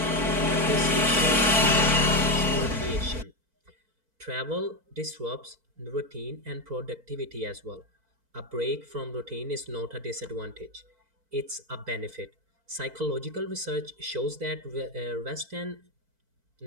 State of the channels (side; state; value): left; late; 4.5 ms